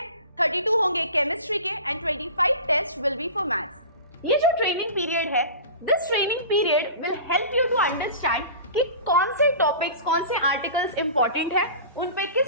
32 होंगे केमिस्ट्री के and 25 test will be for maths. ये जो ट्रेनिंग पीरियड है, this training period will help you to understand कि कौन से टॉपिक्स, कौन से आर्टिकल्स इंपॉर्टेंट है, उन पे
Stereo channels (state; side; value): inverted; both; correlation -0.37